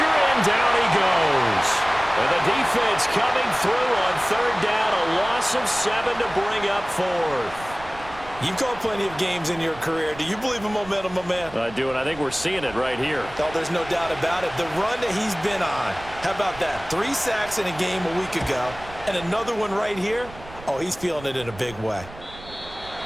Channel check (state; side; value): noise; right; rumble, 17 dB below the sound